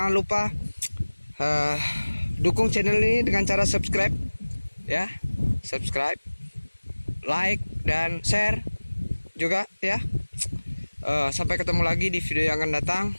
lupa dukung channel ini dengan cara subscribe ya, subscribe, like dan share juga ya. Sampai ketemu lagi di video yang akan datang.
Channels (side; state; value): both; inverted; correlation -1.00